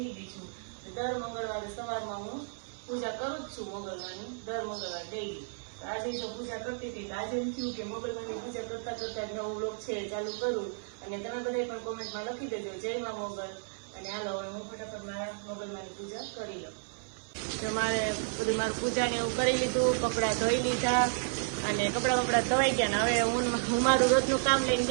ગઈ છું. દર મંગળવારે સવારમાં હું પૂજા કરું જ છું મંગળવારની, દર મંગળવાર ડેઈલી. આજે જો પૂજા કરતી હતી આજે એમ થયું કે મંગળવારની પૂજા કરતા કરતા નવો વ્લોગ છે ચાલુ કરું. અને તમે બધા પણ કોમેન્ટમાં લખી દેજો જય માં મોગલ. અને હાલો હવે હું ફટાફટ મારા મોગલમાંની પૂજા કરી લઉં. તો મારે બધું મારું પૂજાને એવું કરી લીધું, કપડાં ધોઈ લીધા અને કપડાં ધોઈ ગયા. ને હવે હું મારું રોજનું કામ લઈને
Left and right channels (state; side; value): silent; left; 56 dB below the other